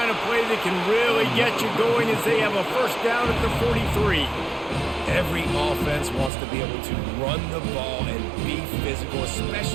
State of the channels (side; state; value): left; drops out; at 6.3 s